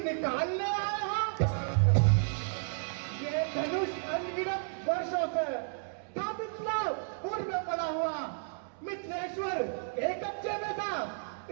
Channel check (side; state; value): left; silent; digital silence